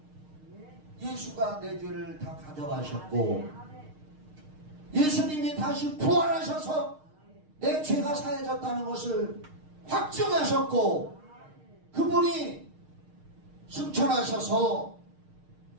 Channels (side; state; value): left; late; 6.5 ms